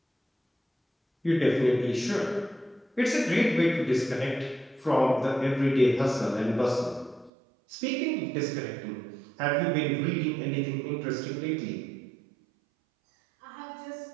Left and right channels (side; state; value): left; drops out; at 7.3 s